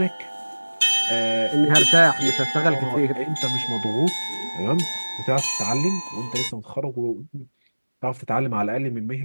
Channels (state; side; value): inverted; both; correlation -1.00